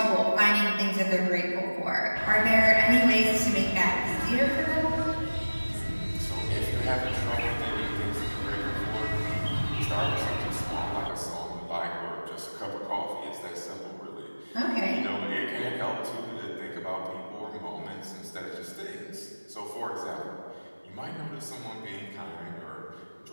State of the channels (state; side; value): inverted; both; correlation -1.00